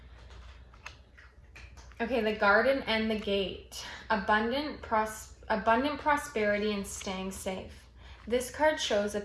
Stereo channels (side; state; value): both; identical; correlation 1.00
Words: Okay, the garden and the gate. Abundant prosperity and staying safe. This card shows a